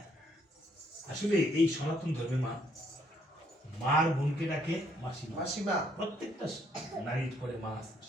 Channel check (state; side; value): normal; both; correlation 0.69